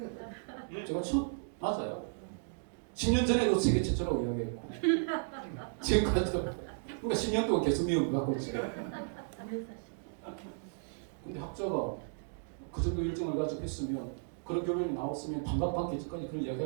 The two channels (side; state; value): left; silent; digital silence